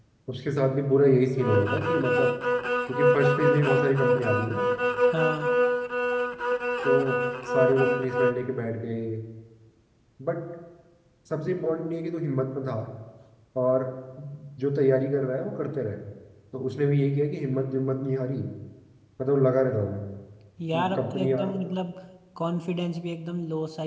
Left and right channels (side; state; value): both; identical; correlation 1.00